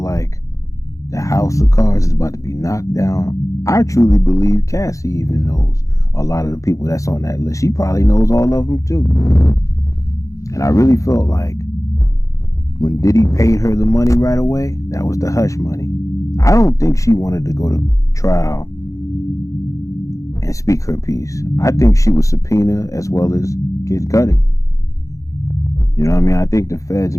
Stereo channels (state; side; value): late; right; 0.16 ms